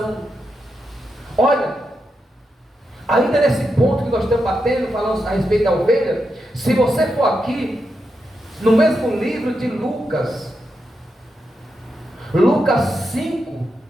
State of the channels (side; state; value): both; normal; correlation 0.85